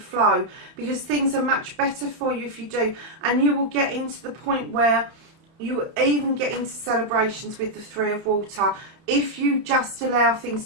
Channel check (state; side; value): late; left; 31 ms